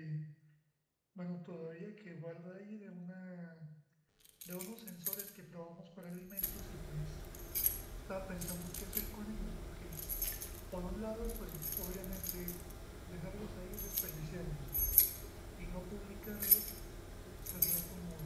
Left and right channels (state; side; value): identical; both; correlation 1.00